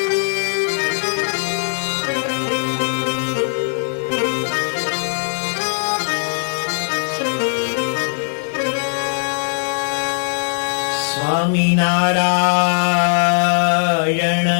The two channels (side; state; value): right; silent; digital silence